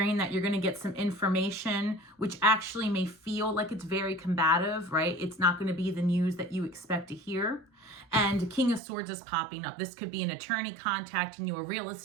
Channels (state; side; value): drops out; left; at 8.8 s